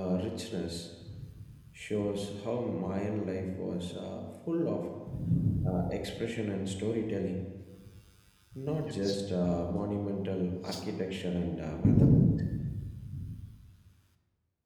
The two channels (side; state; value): both; identical; correlation 1.00